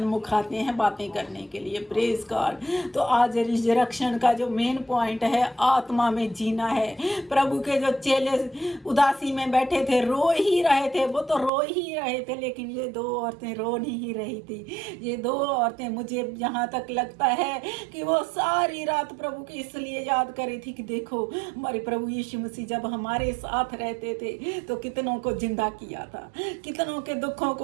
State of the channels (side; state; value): left; drops out; at 11.5 s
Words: आते हैं बातें करने के लिए। Praise God. तो आज रिजरेक्शन का जो मेन पॉइंट है, आत्मा में जीना है। प्रभु के जो चेले उदासी में बैठे थे, रो ही रहे थे, वो तो रो ही रहे थे, लेकिन ये 2 औरतें रो नहीं रही थी। ये 2 औरतें, मुझे यहाँ तक लगता है कि वो सारी रात प्रभु की इसलिए याद करी थी कि देखो, हमारे प्रभु यीशु मसीह जब हमारे साथ रहते थे तो कितनों को जिंदा किया था, कितनों के दुखों